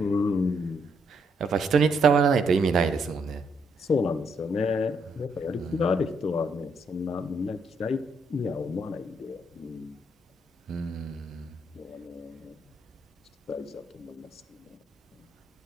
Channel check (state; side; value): normal; both; correlation 0.74